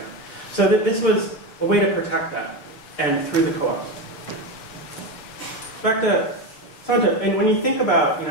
So this was a way to protect that, and through the co-ops. Back to Santa, and when you think about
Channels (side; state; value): right; late; 6.8 ms